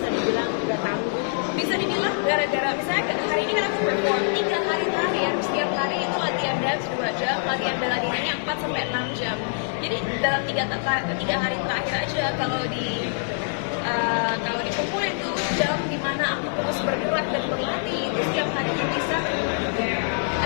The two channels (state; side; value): silent; right; digital silence